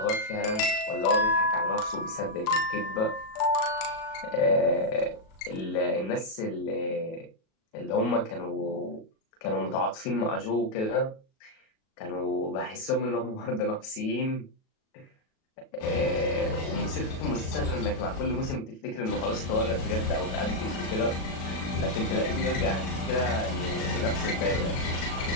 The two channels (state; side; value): late; right; 37 ms